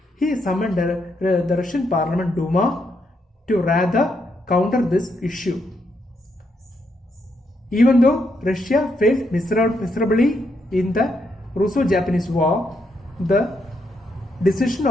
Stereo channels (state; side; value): normal; both; correlation 0.78